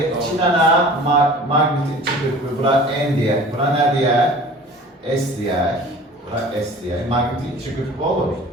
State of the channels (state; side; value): normal; both; correlation 0.44